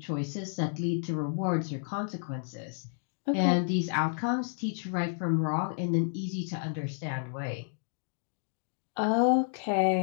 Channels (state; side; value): silent; right; 57 dB below the other